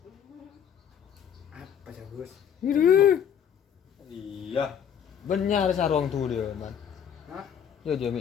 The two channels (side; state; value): right; quieter; 8.4 dB